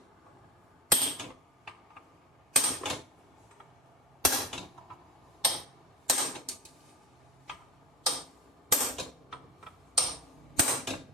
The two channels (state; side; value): normal; both; correlation 0.31